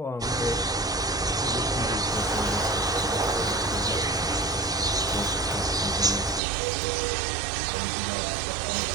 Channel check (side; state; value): left; drops out; at 6.4 s